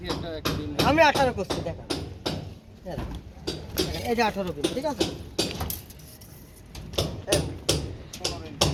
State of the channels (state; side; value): identical; both; correlation 1.00